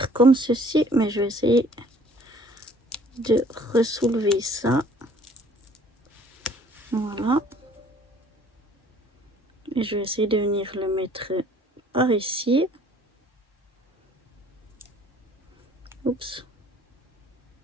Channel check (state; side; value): normal; both; correlation 0.56